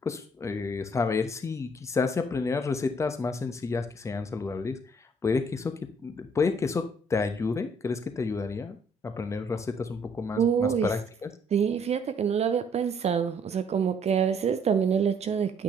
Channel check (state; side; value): normal; both; correlation 0.64